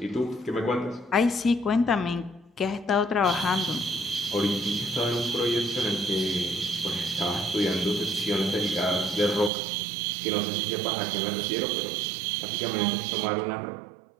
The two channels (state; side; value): drops out; left; at 9.5 s